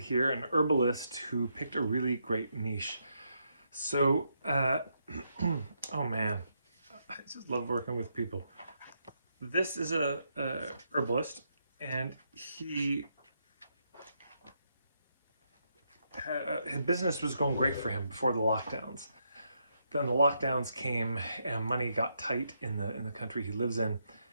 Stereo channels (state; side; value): inverted; both; correlation -0.79